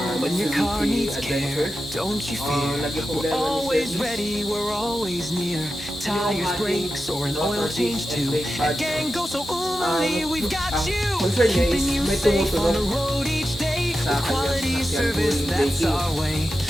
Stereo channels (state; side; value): normal; both; correlation 0.91